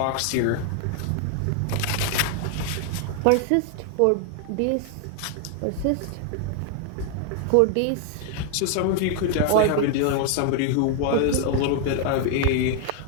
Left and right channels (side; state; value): both; different; correlation 0.00